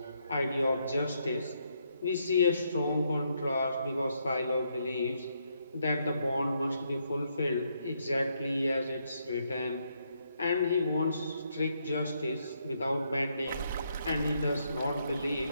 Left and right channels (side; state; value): both; inverted; correlation -0.76